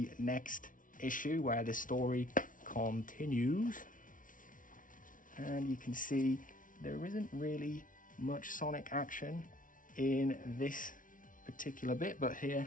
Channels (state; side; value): late; right; 0.38 ms